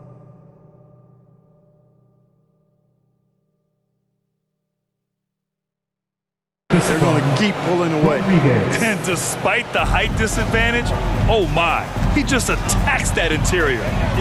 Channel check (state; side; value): identical; both; correlation 1.00